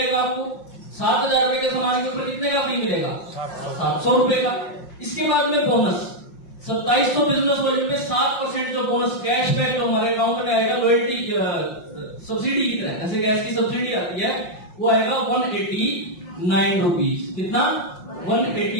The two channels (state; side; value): late; right; 5.6 ms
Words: आपको। 7,000 रुपए के सामान के ऊपर कितने का फ्री मिलेगा? 700 रुपए का। इसके बाद में बोनस 2700 बिजनेस वॉल्यूम पे 7% जो बोनस कैशबैक जो हमारे अकाउंट में आएगा, लॉयल्टी सब्सिडी की तरह, जैसे गैस की सब्सिडी आती है, वो आएगा 189 रुपीज। कितना?